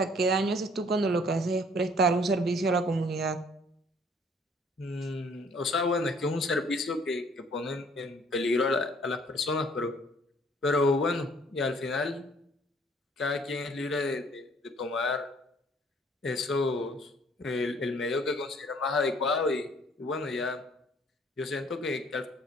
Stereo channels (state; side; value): normal; both; correlation 0.59